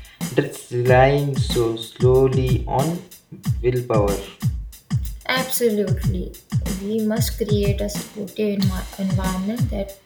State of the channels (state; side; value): identical; both; correlation 1.00